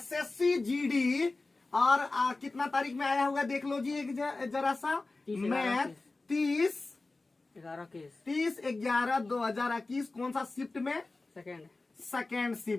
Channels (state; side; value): quieter; right; 3.4 dB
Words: जीडी और कितना तारीख में आया होगा देख लो जी एक जरा सा। मैथ 30/11/2021 कौन सा शिफ्ट में? Second